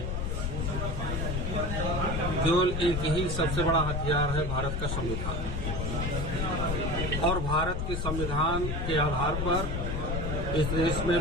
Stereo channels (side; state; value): left; noise; rumble, 2 dB below the sound